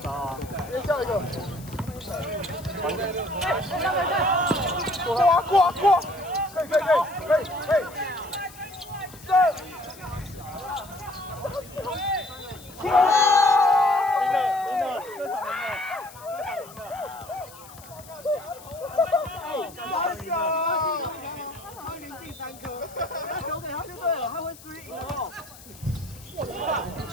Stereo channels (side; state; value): left; noise; hiss, 20 dB below the sound